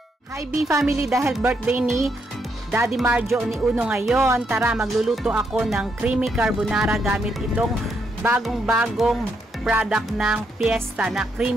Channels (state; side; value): normal; both; correlation 0.77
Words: Hi B family, dahil birthday ni Daddy Marjo ni Uno ngayon, tara magluluto ako ng creamy carbonara gamit itong bagong-bagong product ng Fiesta na